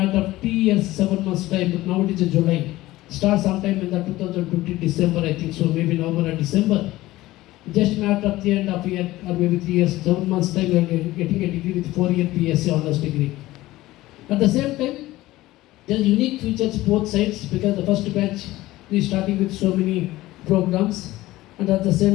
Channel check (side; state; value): right; quieter; 17.3 dB